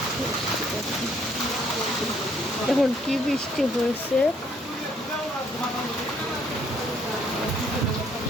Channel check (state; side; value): normal; both; correlation 0.66